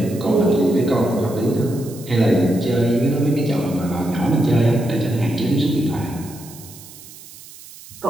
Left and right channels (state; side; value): noise; right; hiss, 18 dB below the sound